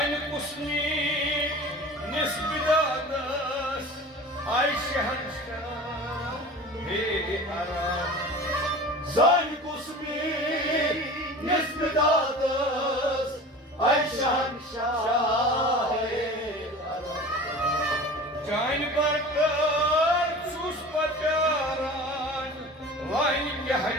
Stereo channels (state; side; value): normal; both; correlation 0.38